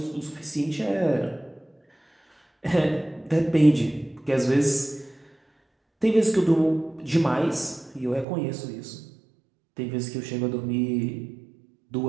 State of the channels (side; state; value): left; drops out; at 8.2 s